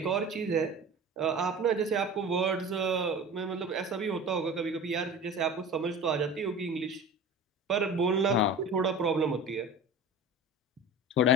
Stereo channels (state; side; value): normal; both; correlation 0.36